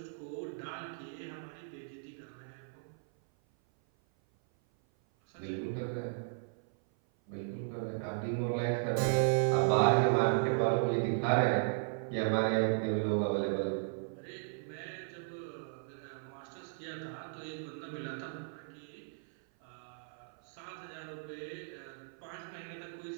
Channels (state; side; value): silent; left; 54 dB below the other